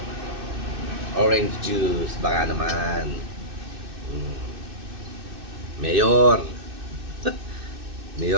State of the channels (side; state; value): left; late; 2.6 ms